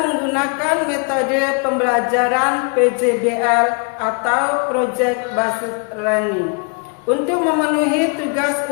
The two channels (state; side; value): quieter; right; 37.6 dB